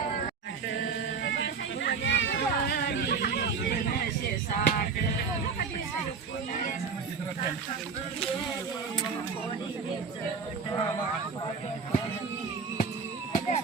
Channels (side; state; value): left; quieter; 5.4 dB